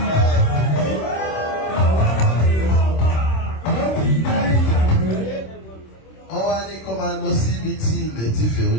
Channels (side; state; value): right; late; 26 ms